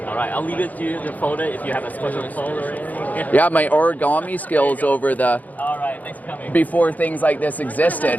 All right, I'll leave it to you to fold it if you have a special fold or anything. Yeah, my origami skills over the All right, thanks for coming. before things like this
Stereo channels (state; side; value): late; right; 0.079 ms